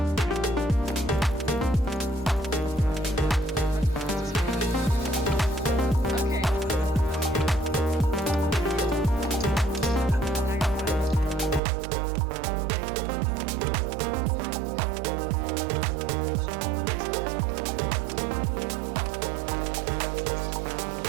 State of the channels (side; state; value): left; drops out; at 11.6 s